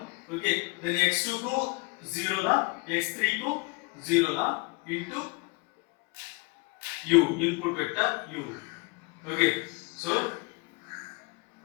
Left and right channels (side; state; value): right; quieter; 27.6 dB